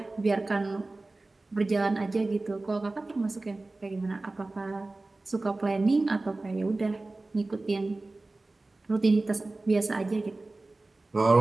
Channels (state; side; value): quieter; left; 3.1 dB